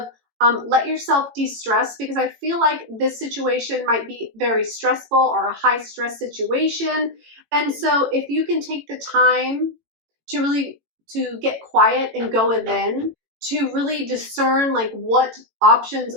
let yourself de-stress, because I feel like this situation might be very stressful or a high stress situation. And so if you can take the time to really get quiet and go within, to really discern like what options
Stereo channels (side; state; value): left; late; 18 ms